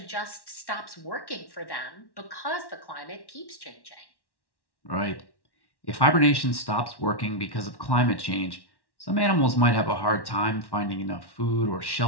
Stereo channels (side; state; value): right; late; 1.1 ms